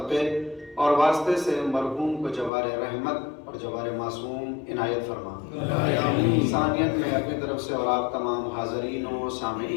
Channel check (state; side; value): drops out; right; at 2.5 s